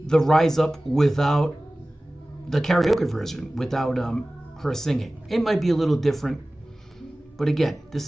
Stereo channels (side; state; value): both; normal; correlation 0.97